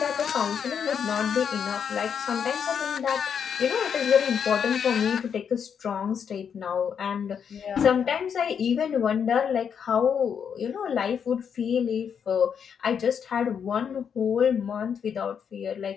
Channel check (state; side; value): quieter; right; 7.4 dB